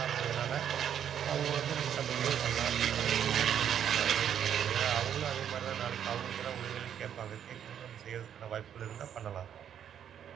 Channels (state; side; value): quieter; left; 9.2 dB